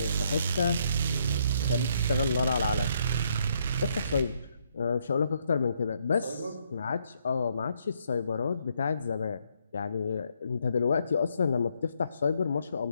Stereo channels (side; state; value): both; inverted; correlation -0.72